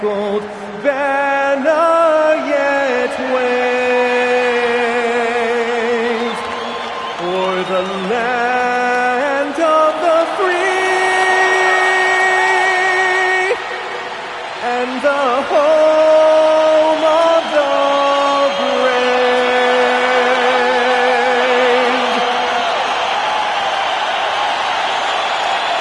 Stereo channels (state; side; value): identical; both; correlation 1.00